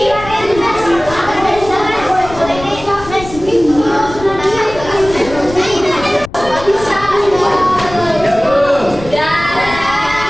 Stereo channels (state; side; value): noise; left; rumble, 14 dB below the sound